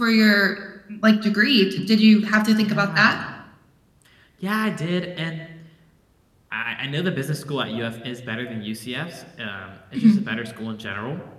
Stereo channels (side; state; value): both; identical; correlation 1.00